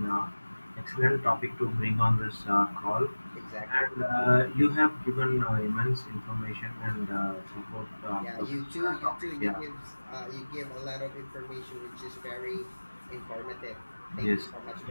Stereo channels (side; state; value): both; inverted; correlation -1.00